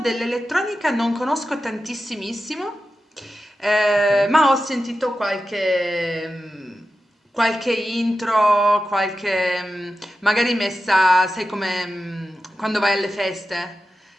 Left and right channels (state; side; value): normal; both; correlation 0.92